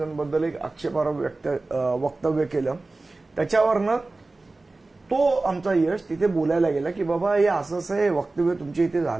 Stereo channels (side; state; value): left; quieter; 3.3 dB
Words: एक आक्षेपार्ह वक्तव्य केलं. त्याच्यावरनं तो आमचा यश तिथे बोलायला गेला की बाबा हे असं हे वक्तव्य तुमच्या इथे